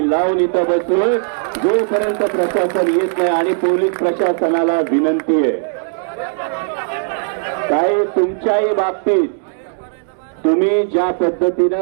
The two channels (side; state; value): left; silent; 68 dB below the other